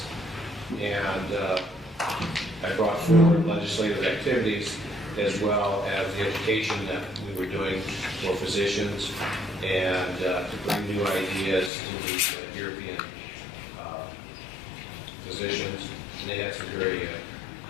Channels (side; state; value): right; drops out; at 11.7 s